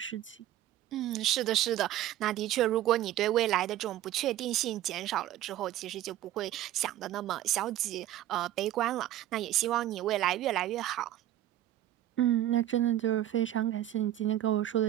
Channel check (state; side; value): quieter; left; 13.1 dB